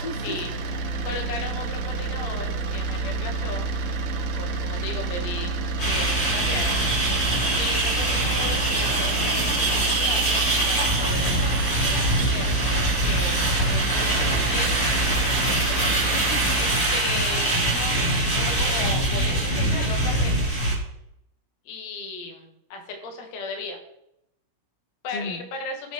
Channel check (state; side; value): late; right; 16 ms